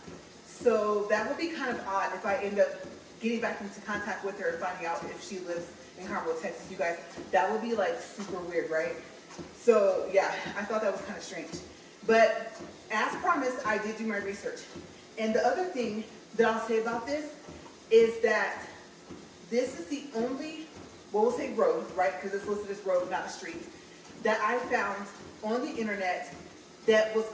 So that would be kind of odd if I end up getting back into contact with her and finding out if she lives in Conroe, Texas. You guys, that would be like super weird, right? So yeah, I thought that was kind of strange. But as promised, I did do my research. And the other thing that I'll say about this is that this is the only, well, we'll say road, right? Because it's listed as road, not a street, that I found on the internet that was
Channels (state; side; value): identical; both; correlation 1.00